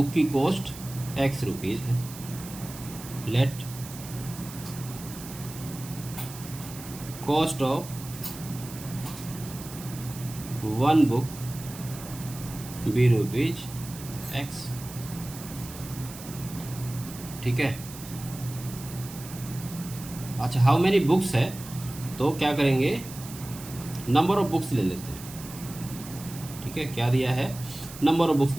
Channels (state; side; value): noise; right; hiss, 14 dB below the sound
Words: की कॉस्ट X रुपीज़ है। Let cost of 1 book be rupees X, ठीक है। अच्छा, हाउ मैनी बुक्स है, तो क्या करेंगे, नंबर ऑफ बुक्स ले लेते हैं, ठीक है। क्या दिया है, नंबर ऑफ बुक्स